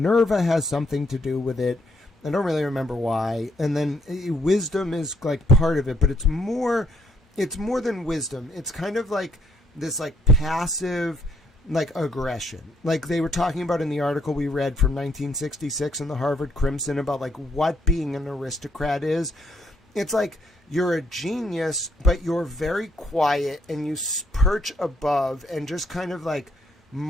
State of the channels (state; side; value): normal; both; correlation 0.72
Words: has something to do with it. I don't really remember why. And then wisdom is like part of it, but it's more than wisdom. It's kind of like this like passive like aggression. Like they were talking about in the article we read from 1966 in the Harvard Crimson about like what being an aristocrat is. It's like you're a genius, but you're very quiet, and you perch above and just kind of like